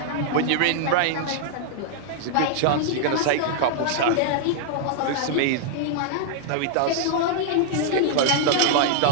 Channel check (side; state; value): both; different; correlation -0.01